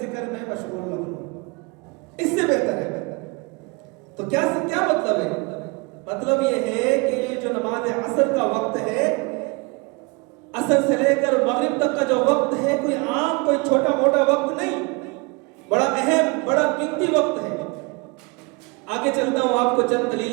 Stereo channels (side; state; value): left; quieter; 28.7 dB